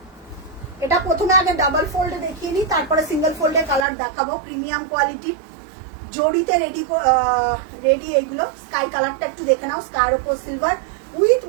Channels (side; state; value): left; drops out; at 3.9 s